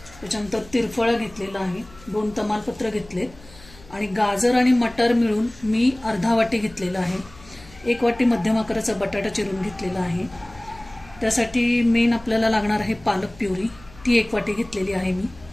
त्याच्यानंतर तिरफळा घेतलेला आहे, 2 तमालपत्र घेतलेत आणि गाजर आणि मटर मिळून मी अर्धा वाटी घेतलेला आहे। 1 वाटी मध्यम आकाराचा बटाटा चिरून घेतलेला आहे। त्यासाठी मेन आपल्याला लागणार आहे पालक प्युरी, ती 1 वाटी घेतलेली आहे मी।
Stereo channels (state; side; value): noise; left; hum, 22 dB below the sound